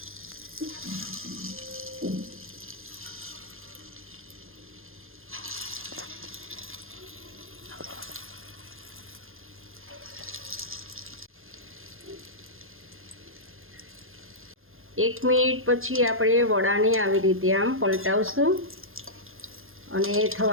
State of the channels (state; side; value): late; left; 0.60 ms